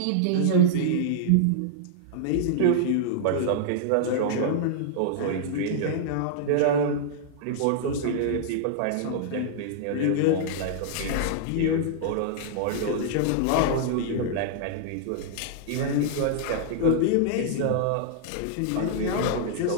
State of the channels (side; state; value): both; different; correlation -0.01